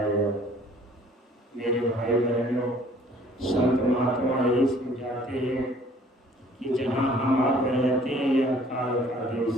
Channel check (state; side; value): normal; both; correlation 0.55